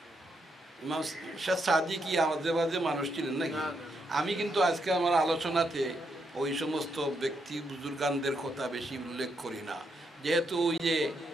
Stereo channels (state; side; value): normal; both; correlation 0.79